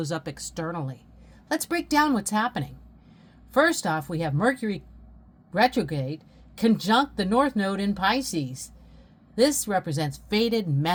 up externally. Let's break down what's happening. First off, we have Mercury retrograde conjunct the North Node in Pisces. This represents faded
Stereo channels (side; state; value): both; identical; correlation 1.00